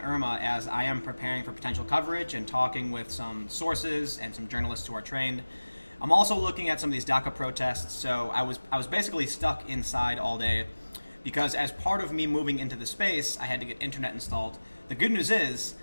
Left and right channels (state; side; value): inverted; both; correlation -1.00